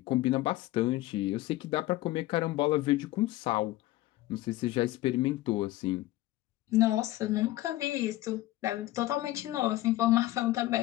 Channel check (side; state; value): right; quieter; 16.8 dB